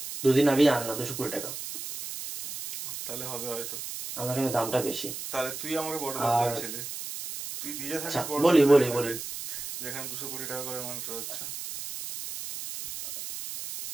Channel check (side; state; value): right; noise; hiss, 8 dB below the sound